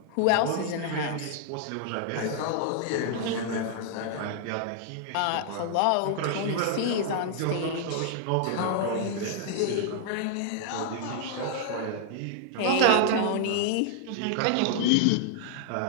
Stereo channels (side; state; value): both; different; correlation -0.01